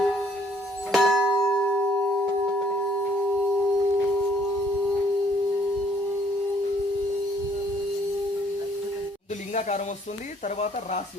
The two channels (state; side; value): normal; both; correlation 0.63